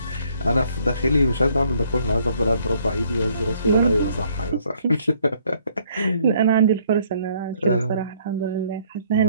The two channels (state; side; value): inverted; both; correlation -0.64